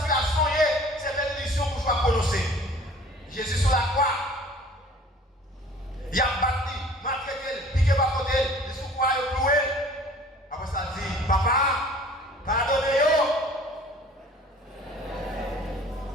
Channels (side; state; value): both; normal; correlation 0.49